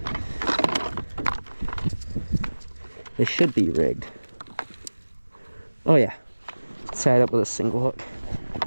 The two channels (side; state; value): both; inverted; correlation -1.00